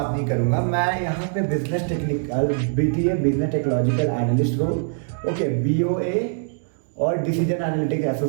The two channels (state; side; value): silent; left; digital silence